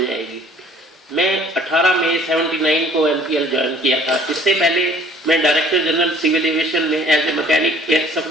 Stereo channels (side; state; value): both; normal; correlation 0.54